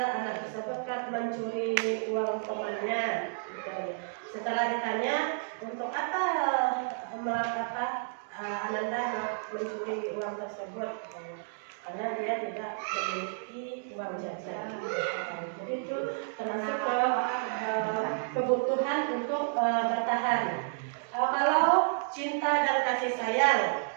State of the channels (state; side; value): silent; left; digital silence